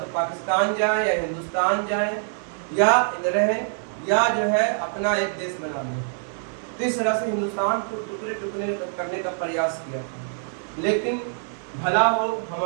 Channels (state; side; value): silent; left; 62 dB below the other